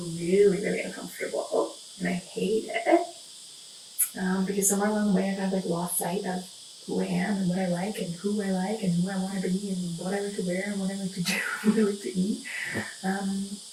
really uncomfortable. And I hate it. Because somewhere along the way I've had like lost sight of who I am and what I like and who I like and who I want to be and what I like to wear and what I like to do and what I like to eat.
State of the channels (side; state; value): both; identical; correlation 1.00